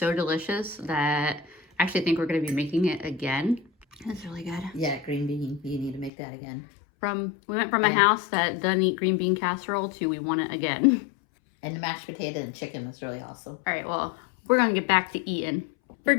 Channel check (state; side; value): drops out; right; at 6.1 s